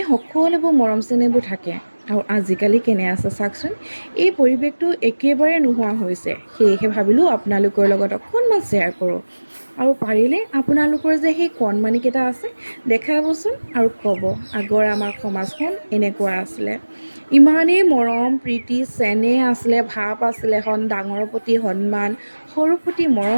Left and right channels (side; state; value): both; inverted; correlation -1.00